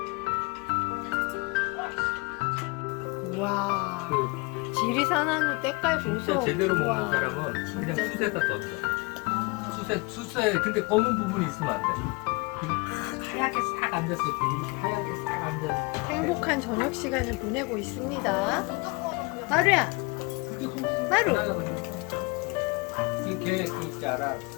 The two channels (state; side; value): quieter; right; 27.8 dB